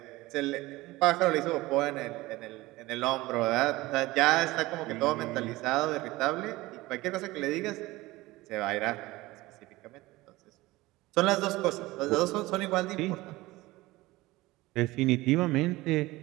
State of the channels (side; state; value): left; quieter; 19.5 dB